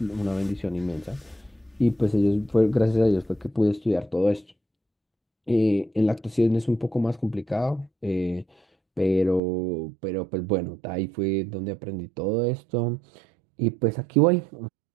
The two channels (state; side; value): drops out; left; at 9.4 s